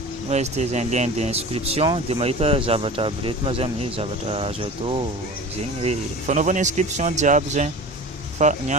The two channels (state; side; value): normal; both; correlation 0.35